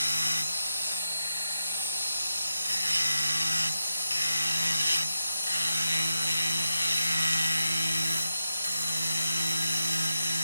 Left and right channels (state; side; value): inverted; both; correlation -0.86